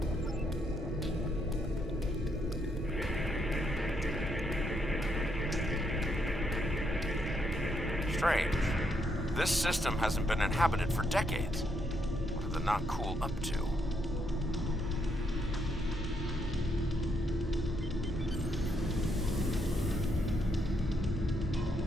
Strange. This system hasn't been inhabited for decades. What are the Nakul up to?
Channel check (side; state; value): both; normal; correlation 0.76